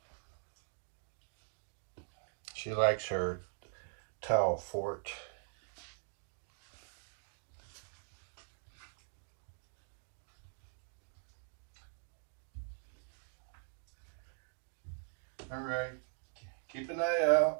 She likes her towel fort. All right, keep an eye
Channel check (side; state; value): left; silent; digital silence